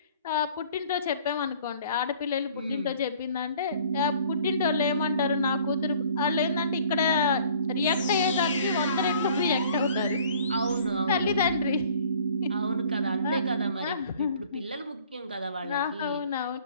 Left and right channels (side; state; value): both; inverted; correlation -0.53